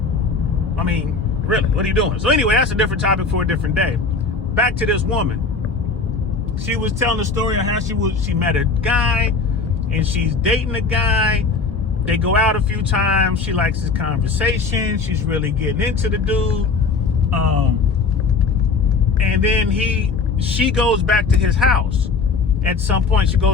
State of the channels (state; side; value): quieter; right; 4.4 dB